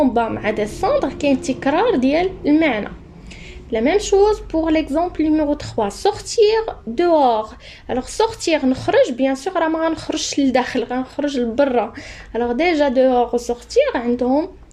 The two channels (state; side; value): identical; both; correlation 1.00